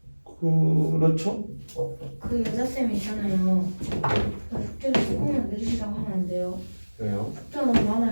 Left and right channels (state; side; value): inverted; both; correlation -1.00